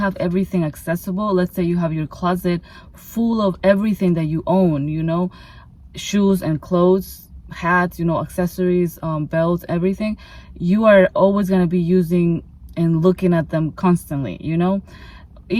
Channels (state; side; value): identical; both; correlation 1.00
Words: everything accessible, let's say you have your closet full of everything that you own, shoes and clothes, hats, accessories, belts, everything, you are always going to be using and looking at them constantly,